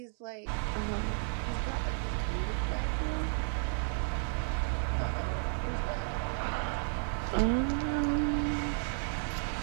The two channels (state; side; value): silent; left; 56 dB below the other